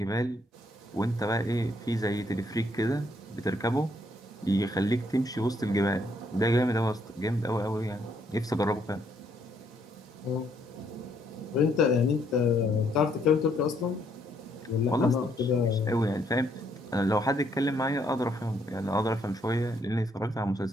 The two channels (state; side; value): normal; both; correlation 0.70